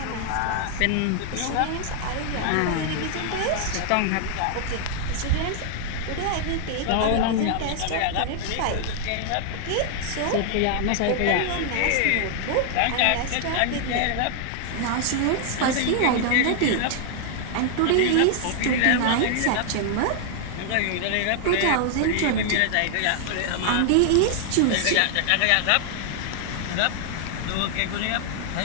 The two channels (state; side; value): different; both; correlation 0.00